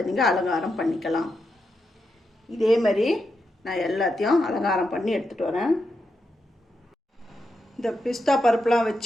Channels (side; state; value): both; normal; correlation 0.85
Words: நீங்கள் அலங்காரம் பண்ணிக்கலாம். இதே மாதிரி நான் எல்லாத்தையும் அலங்காரம் பண்ணி எடுத்துகிட்டு வரேன். இந்த பிஸ்தா பருப்புலாம்